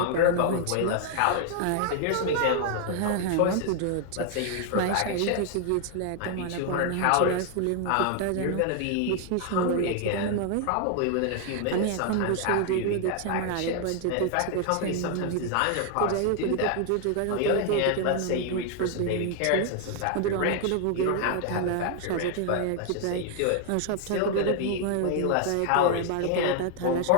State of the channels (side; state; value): both; different; correlation 0.00